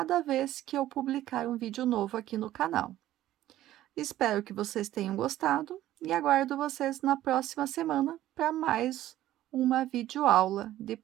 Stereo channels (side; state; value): left; quieter; 13.9 dB